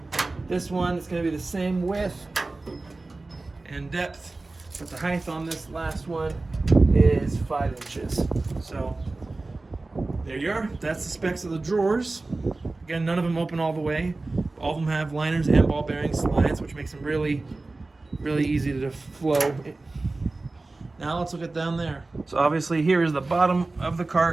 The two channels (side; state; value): left; quieter; 3.3 dB